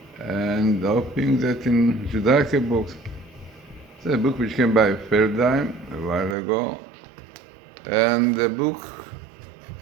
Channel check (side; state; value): left; drops out; at 6.4 s